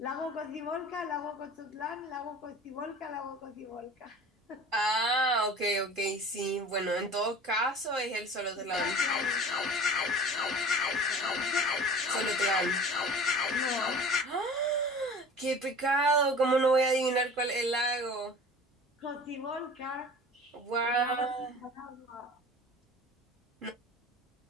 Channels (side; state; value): both; normal; correlation 0.41